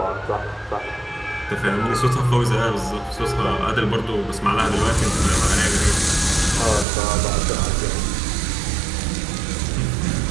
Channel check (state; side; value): drops out; left; at 6.9 s